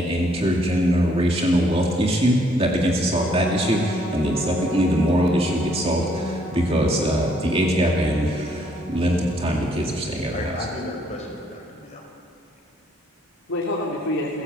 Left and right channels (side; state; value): both; normal; correlation 0.67